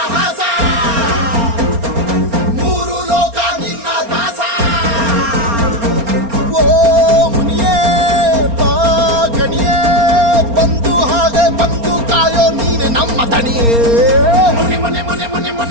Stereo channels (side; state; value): left; late; 4.3 ms